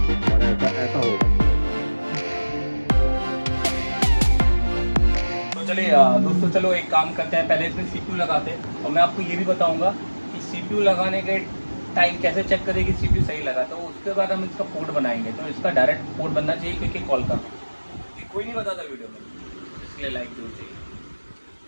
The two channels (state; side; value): inverted; both; correlation -1.00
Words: और ऐसा होगा। तो चलिए दोस्तों, चलो एक काम करते हैं, पहले इसमें सीपीयू लगाते हैं और मैं आपको ये भी बताऊंगा कि सीपीयू लगाने के टाइम कैसे चेक करें कि सीपीयू सही लगा। तो उसके बाद हम इसका पोर्ट बनाएंगे। तो इसका डायरेक्ट पोर्ट बनना चाहिए क्योंकि कॉल का कोई नहीं बताता वीडियो में, इसलिए लाइक जरूर चाहिए।